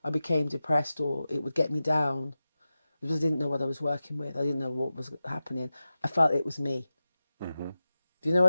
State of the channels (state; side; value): inverted; both; correlation -0.93